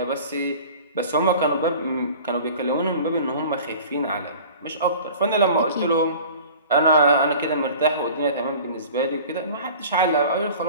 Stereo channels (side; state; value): both; inverted; correlation -0.42